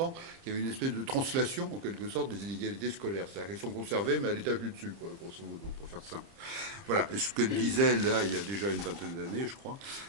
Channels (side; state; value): left; late; 30 ms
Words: qu'il y avait une espèce de translation, en quelque sorte, des inégalités scolaires. C'est-à-dire qu'elles sont conservées, mais à l'étage du dessus, quoi, grosso modo, pour faire simple. Voilà, et ce qu'elle disait, là, il y a déjà une vingtaine d'années, je crois,